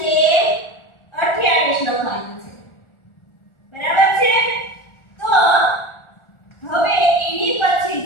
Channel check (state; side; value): late; right; 1.4 ms